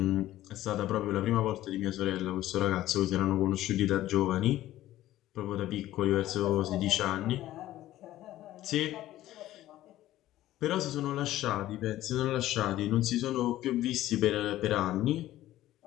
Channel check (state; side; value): quieter; right; 14.5 dB